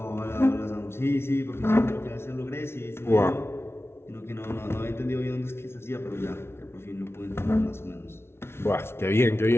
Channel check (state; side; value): late; right; 0.12 ms